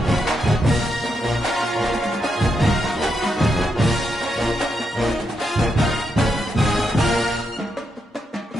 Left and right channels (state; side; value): normal; both; correlation 0.82